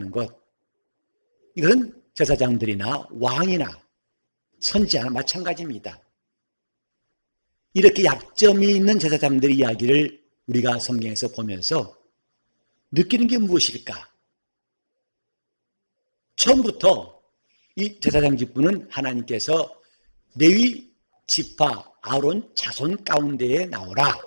것. 이건 제사장들이나 왕이나 선지자나 마찬가지입니다. 이렇게 약점이 있는 제사장들의 이야기를 우리가 성경에서 보면서 느끼는 게 무엇일까? 처음부터 이 제사장 직분은 하나님께서 레위 지파 아론 자손 가운데에 나오라.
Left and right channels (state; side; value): inverted; both; correlation -1.00